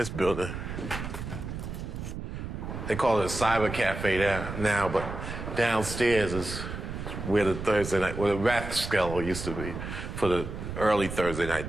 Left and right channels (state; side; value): noise; right; rumble, 7 dB below the sound